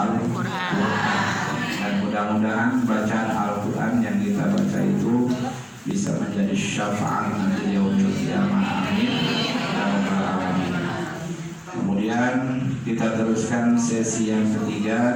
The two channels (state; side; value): identical; both; correlation 1.00